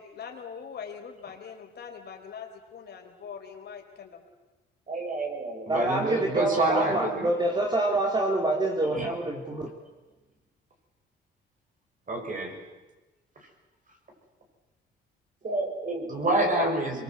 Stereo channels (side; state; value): both; normal; correlation 0.44